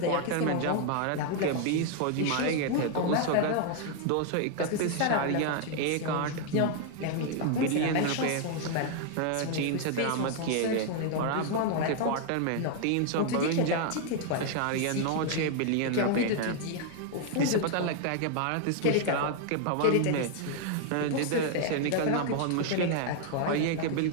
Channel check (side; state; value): both; different; correlation 0.00